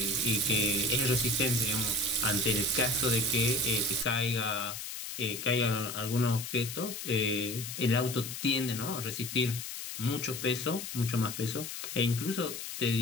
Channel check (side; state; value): left; noise; hiss, 7 dB below the sound